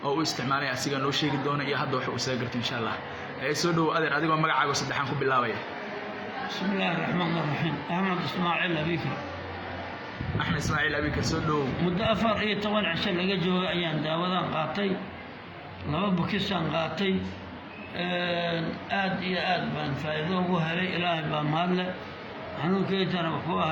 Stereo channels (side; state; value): both; identical; correlation 1.00